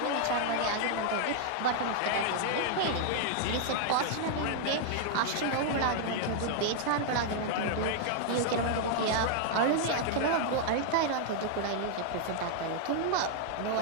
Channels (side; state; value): both; different; correlation -0.01